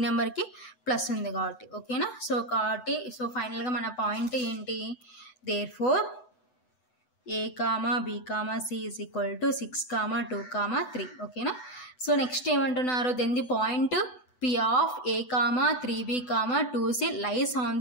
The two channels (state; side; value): late; right; 8.0 ms